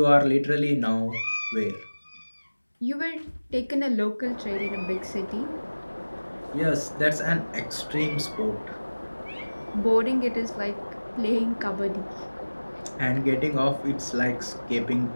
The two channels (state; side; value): inverted; both; correlation -1.00